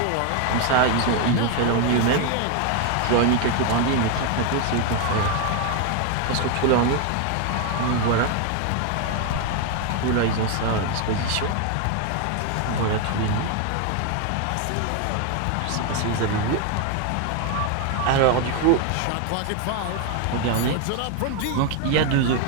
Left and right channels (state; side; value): different; both; correlation 0.01